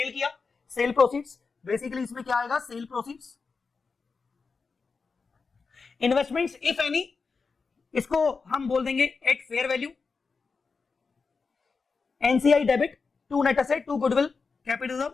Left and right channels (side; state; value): right; quieter; 4.8 dB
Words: किया, सेल प्रोसीड्स। बेसिकली इसमें क्या आएगा, sale proceeds. Investments if any, इसको हम बोल देंगे at fair value. NCI debit, to net asset, to goodwill, capital